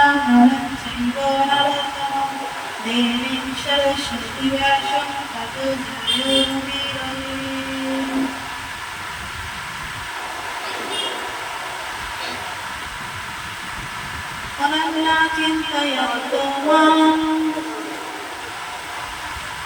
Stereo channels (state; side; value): identical; both; correlation 1.00